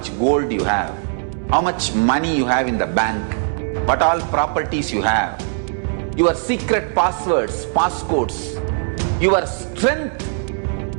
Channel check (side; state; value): left; silent; 66 dB below the other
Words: gold you have, how much money you have in the bank, what all properties you have, your secret passwords, passcodes, your strength